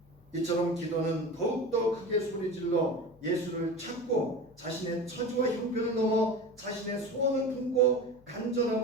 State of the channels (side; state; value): left; noise; hum, 27 dB below the sound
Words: 이처럼 기도는 더욱더 크게 소리질러 예수를 찾고 자신의 처지와 형편을 넘어 자신의 소원을 품고